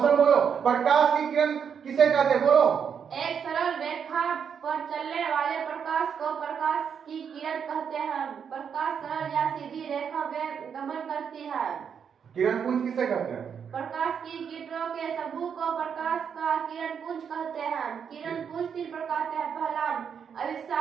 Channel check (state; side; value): quieter; left; 7.3 dB